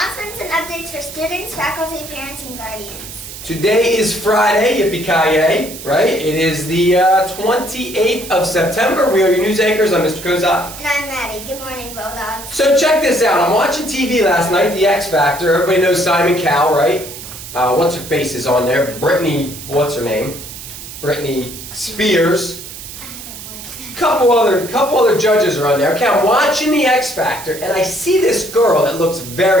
and updates for students, faculty, parents, and guardians. Today is Friday, yippee-ki-yay, right? It is the 28th of September. We are your news anchors. I'm Mr. Kozak. And I'm Maddie. Good morning, Bulldogs. So check this out. I'm watching TV last night, the X Factor. Everybody knows Simon Cowell, right? What's her face is on there? Brittany, what's her name? Britney Spears. Couple other judges are on there. Okay, I'm watching the X Factor, and I see this girl that looks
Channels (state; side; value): noise; right; hiss, 12 dB below the sound